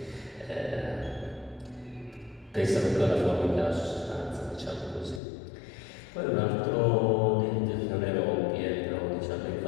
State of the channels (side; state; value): right; drops out; at 5.2 s